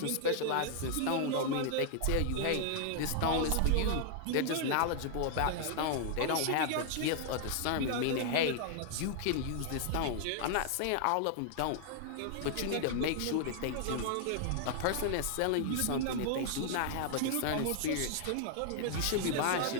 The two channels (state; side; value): different; both; correlation 0.00